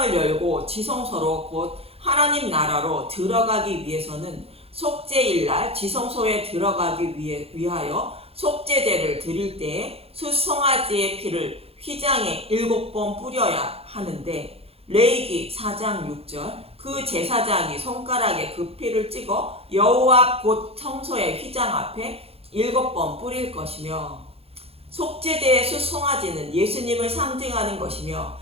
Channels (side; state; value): left; late; 0.29 ms